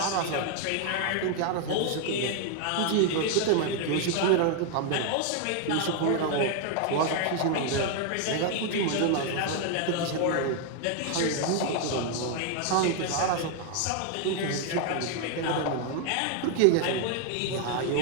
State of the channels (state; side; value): different; both; correlation 0.00